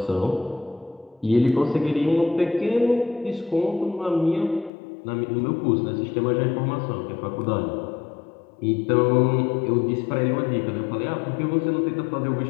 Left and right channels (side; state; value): right; drops out; at 4.7 s